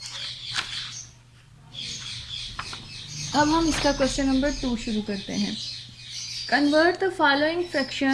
अब हम इसका क्वेश्चन नंबर 2 शुरू करते हैं। Convert the following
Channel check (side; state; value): both; identical; correlation 1.00